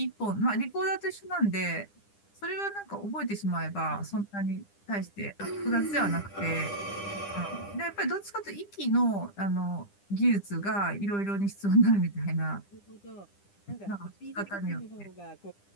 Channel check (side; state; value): right; late; 10 ms